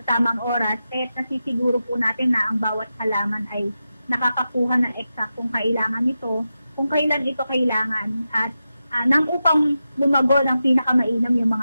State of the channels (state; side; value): inverted; both; correlation -0.90